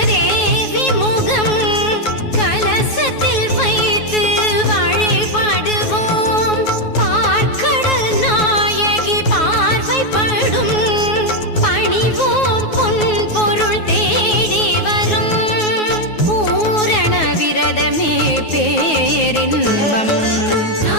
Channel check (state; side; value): late; right; 9.4 ms